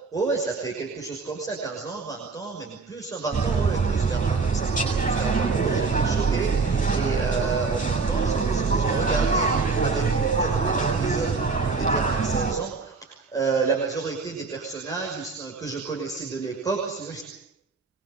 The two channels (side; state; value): left; quieter; 4.4 dB